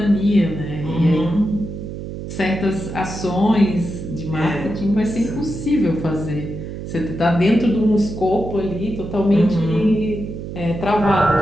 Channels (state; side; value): noise; right; hum, 8 dB below the sound